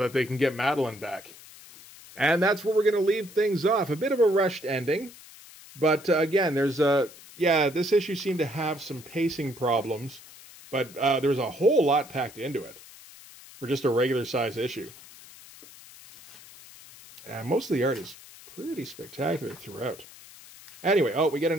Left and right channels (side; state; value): left; noise; hiss, 20 dB below the sound